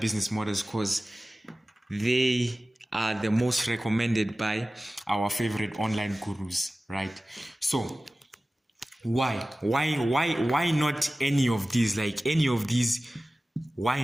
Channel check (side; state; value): both; normal; correlation 0.96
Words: models? Because they are the most recommended by our favorite online gurus, right? So why not any of these? Like any of these, why